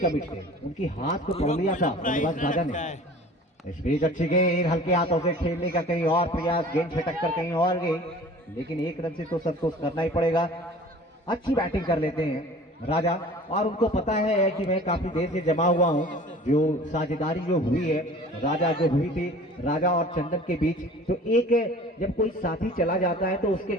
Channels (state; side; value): normal; both; correlation 0.45